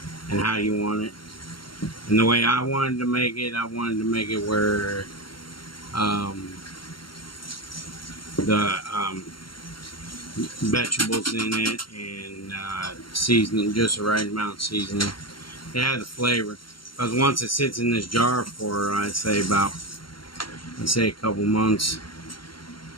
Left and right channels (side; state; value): right; late; 0.73 ms